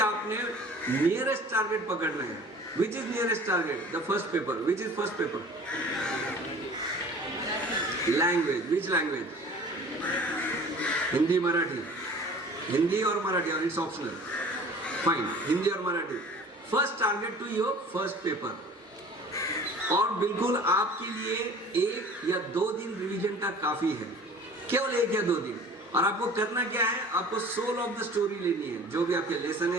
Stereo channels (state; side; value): normal; both; correlation 0.45